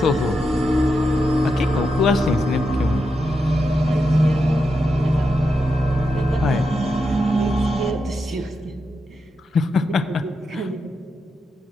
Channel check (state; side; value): normal; both; correlation 0.86